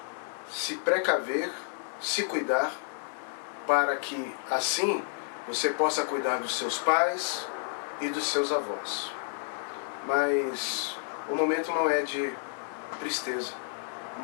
se precaver, se cuidar, para que assim você possa cuidar dos seus pais e dos seus avós. Mas o momento não é de tristeza, o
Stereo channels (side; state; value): right; silent; 58 dB below the other